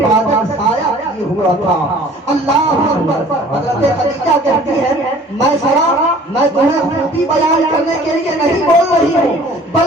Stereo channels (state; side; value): normal; both; correlation 0.50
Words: سایہ کیے ہوا تھا۔ اللہ اکبر، حضرت خدیجہ کہتی ہے میسرہ میں تمہیں خوبی بیان کرنے کے لیے نہیں بول رہی ہوں